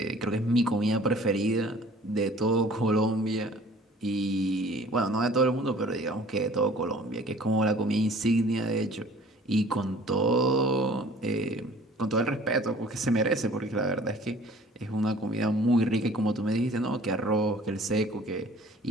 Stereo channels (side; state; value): both; normal; correlation 0.50